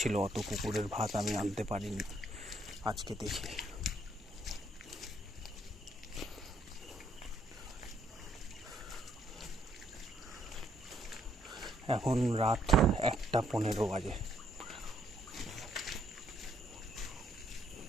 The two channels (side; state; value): both; normal; correlation 0.70